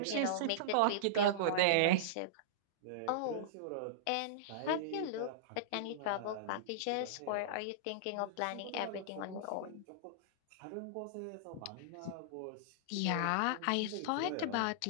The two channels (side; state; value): both; different; correlation -0.02